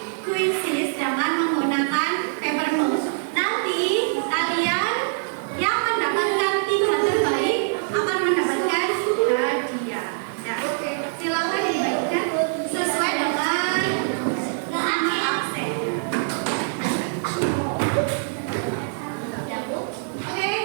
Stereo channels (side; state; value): left; silent; digital silence